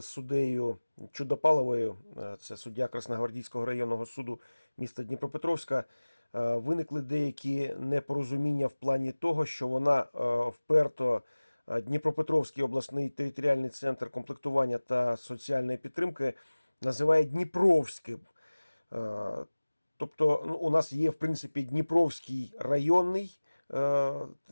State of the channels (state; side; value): inverted; both; correlation -1.00